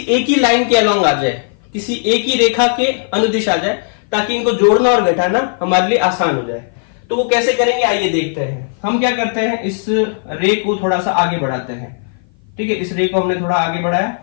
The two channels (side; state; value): right; silent; 56 dB below the other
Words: एक ही लाइन के अलोंग आ जाए, किसी एक ही रेखा के अनुदिश आ जाए, ताकि इनको जोड़ना और घटाना हमारे लिए आसान हो जाए। तो वो कैसे करेंगे आइए देखते हैं। हम क्या करते हैं, इस रे को थोड़ा सा आगे बढ़ाते हैं। ठीक है, इस रे को हमने थोड़ा आगे बढ़ाया,